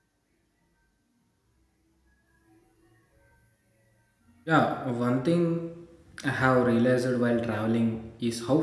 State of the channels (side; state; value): both; identical; correlation 1.00